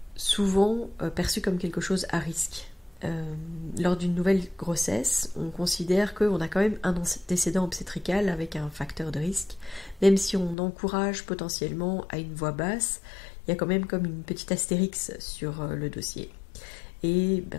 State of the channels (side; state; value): right; drops out; at 10.6 s